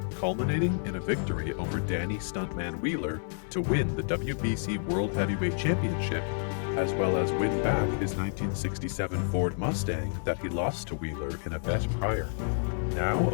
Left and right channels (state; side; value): silent; right; digital silence